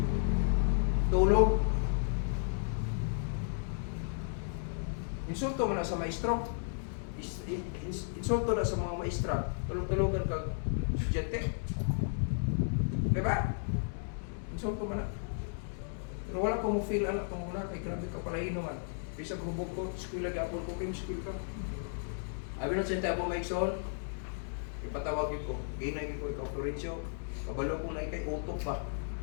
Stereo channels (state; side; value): silent; right; digital silence